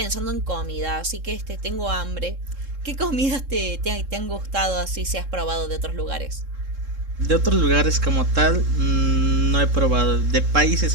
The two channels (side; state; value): left; late; 3.7 ms